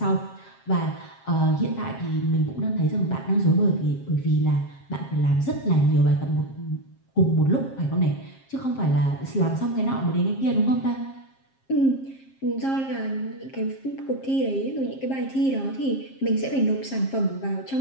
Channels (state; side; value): late; right; 7.5 ms